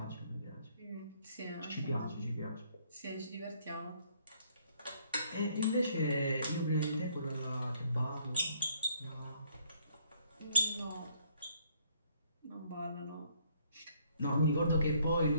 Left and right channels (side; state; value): both; inverted; correlation -0.66